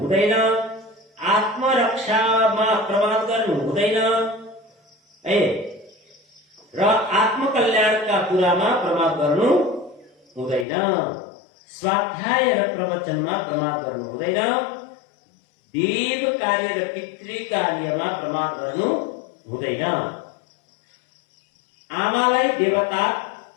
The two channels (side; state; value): right; drops out; at 10.7 s